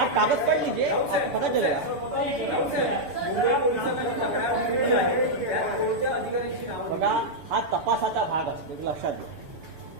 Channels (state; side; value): late; left; 6.9 ms